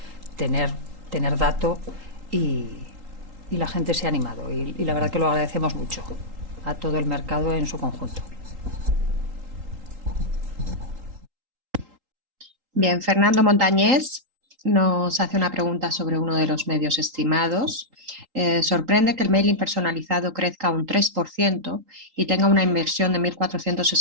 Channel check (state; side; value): late; left; 3.8 ms